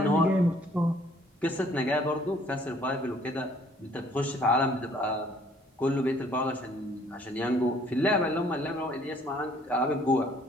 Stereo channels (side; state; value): both; normal; correlation 0.60